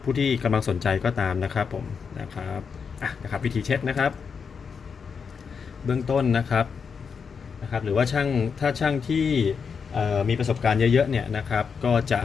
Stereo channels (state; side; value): quieter; right; 6.0 dB